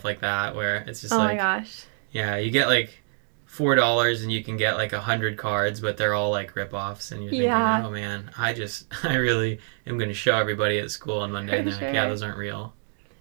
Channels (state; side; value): silent; left; 56 dB below the other